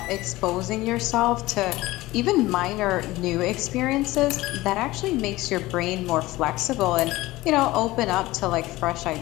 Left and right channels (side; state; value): right; quieter; 18.6 dB